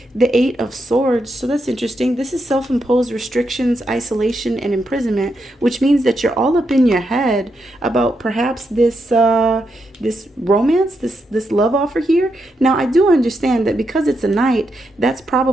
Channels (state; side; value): normal; both; correlation 0.83